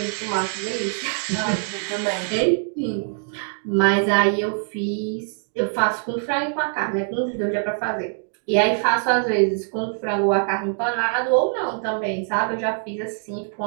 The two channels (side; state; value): left; silent; digital silence